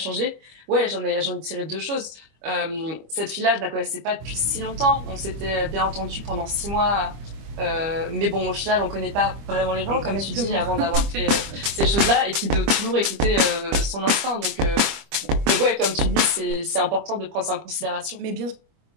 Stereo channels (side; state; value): left; late; 25 ms